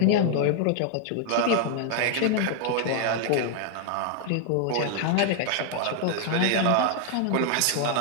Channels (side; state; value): both; different; correlation 0.00